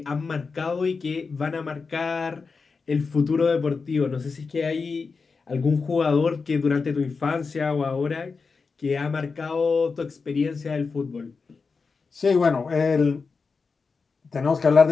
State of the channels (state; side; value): quieter; right; 4.7 dB